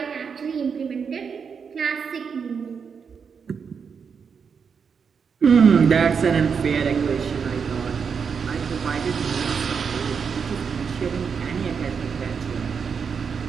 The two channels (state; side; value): quieter; left; 6.2 dB